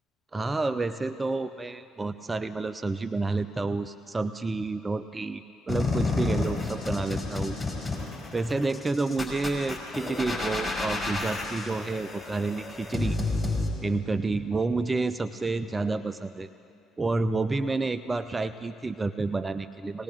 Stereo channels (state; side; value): normal; both; correlation 0.88